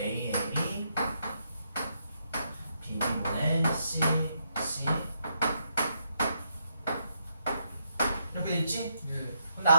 A이 B분의 C, C 이렇게 돼 있지? 예. 근데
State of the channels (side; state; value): both; inverted; correlation -0.77